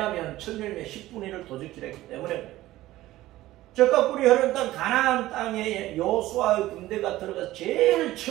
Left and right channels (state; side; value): quieter; left; 16.1 dB